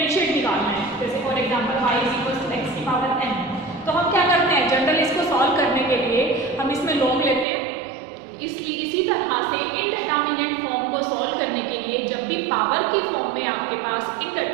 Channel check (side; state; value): left; drops out; at 7.5 s